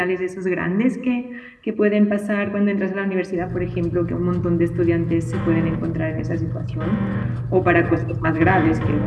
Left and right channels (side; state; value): both; identical; correlation 1.00